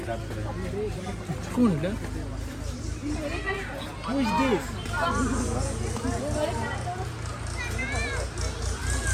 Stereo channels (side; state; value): both; identical; correlation 1.00